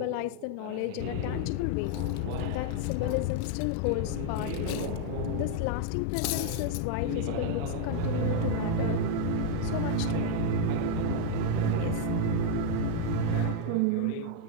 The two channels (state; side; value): different; both; correlation 0.00